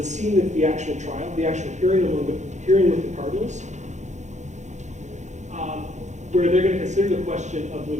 scene of the actual trial, the actual hearing with the cardinals. Where they're going to consider the question of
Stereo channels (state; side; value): late; left; 0.34 ms